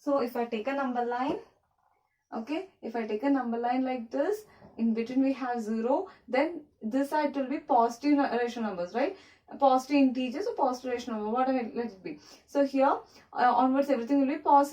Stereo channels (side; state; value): both; identical; correlation 1.00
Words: So if I take a number line, okay, if I take a number line like this, in between we have 0, then this side will be positive rational numbers, right? Positive integers or positive rational number, whatever let it be. So here onwards everything will be